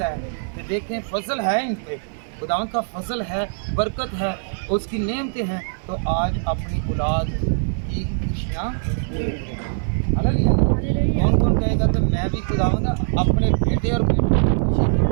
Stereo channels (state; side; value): silent; left; 60 dB below the other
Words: है कि देखें फजल है इन पे, खुदावंद का फजल है, बरकत है, उसकी नेमतें हैं, तो आज अपनी औलाद की खुशियाँ हालेलुया। कौन कौन कहेगा कि मैं भी खुदावंद अपने बेटे और बेटी की खुशी